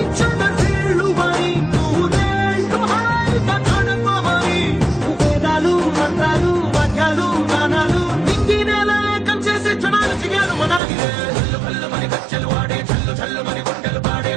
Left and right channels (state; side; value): drops out; left; at 10.8 s